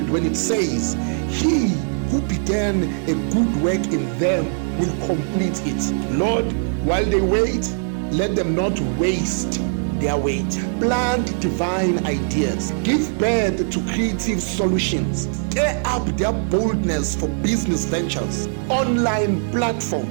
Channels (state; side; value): silent; left; 62 dB below the other